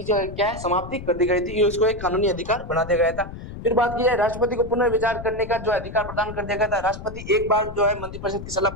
जो क्या है समाप्ति कर दी गई थी, ये उसको एक कानूनी अधिकार बना दिया गया था। फिर बात की जाए राष्ट्रपति को पुनर्विचार करने का जो अधिकार प्रदान कर दिया गया था। राष्ट्रपति एक बार जो है मंत्रिपरिषद की सलाह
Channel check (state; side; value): noise; left; rumble, 11 dB below the sound